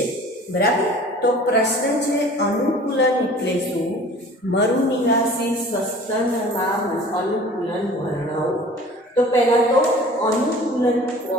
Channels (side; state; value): both; normal; correlation 0.45